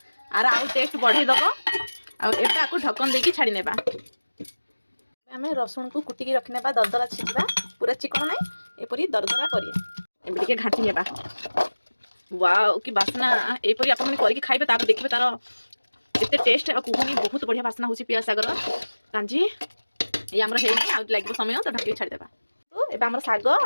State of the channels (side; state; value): both; inverted; correlation -1.00